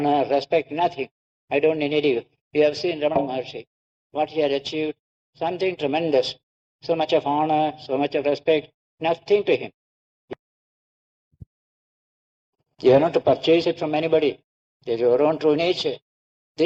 respect, nothing. I don't need you. You have seen Ramana Maharshi, what he had achieved, something tremendous. So much of honor, so much of respect, nothing to him. You are not to purchase it from anybody. It is your own true nature.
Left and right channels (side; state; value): both; identical; correlation 1.00